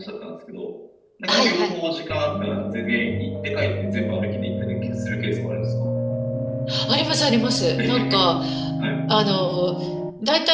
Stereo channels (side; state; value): both; identical; correlation 1.00